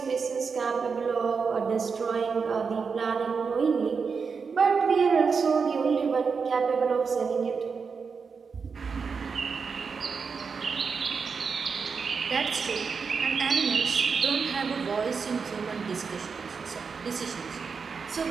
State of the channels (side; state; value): left; quieter; 5.4 dB